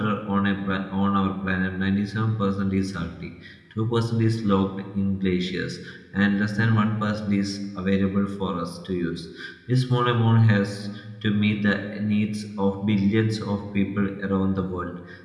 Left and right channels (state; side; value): identical; both; correlation 1.00